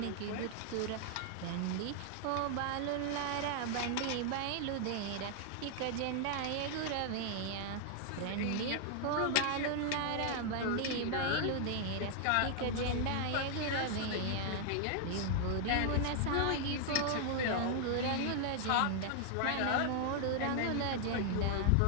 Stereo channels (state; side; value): different; both; correlation 0.00